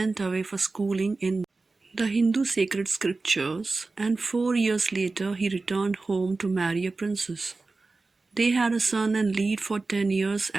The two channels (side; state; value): left; quieter; 3.6 dB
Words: away for schooling in the Hindu sacred scriptures, and 4 years later he returned home to marry a princess. They had a son and lived for 10 years